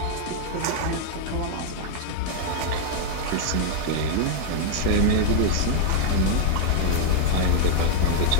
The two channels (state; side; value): different; both; correlation 0.00